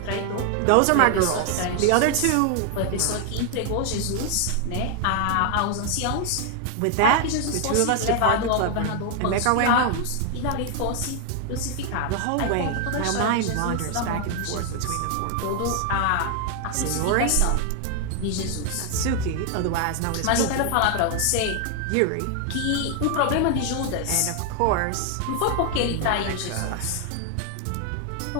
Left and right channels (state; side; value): different; both; correlation 0.00